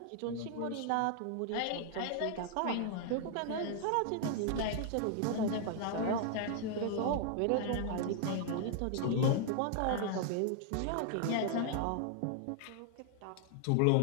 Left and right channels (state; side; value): different; both; correlation 0.00